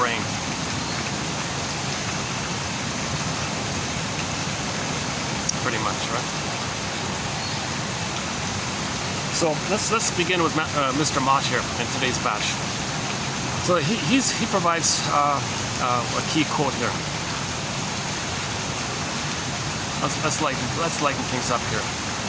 Pretty much, right? So let's begin with Mr. Mott here in today's batch. So he provides a key quote here. Let's lighten things up here.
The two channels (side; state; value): both; identical; correlation 1.00